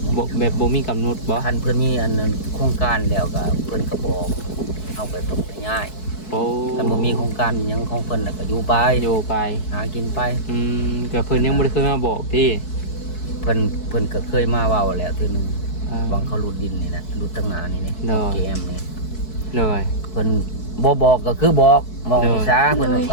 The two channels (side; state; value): right; late; 4.6 ms